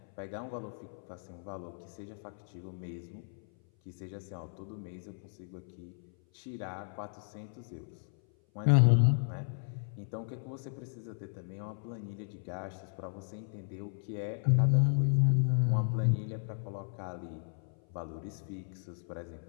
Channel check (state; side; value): silent; right; 55 dB below the other